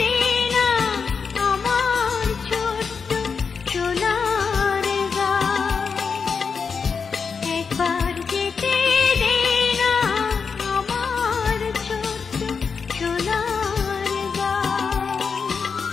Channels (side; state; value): right; quieter; 5.6 dB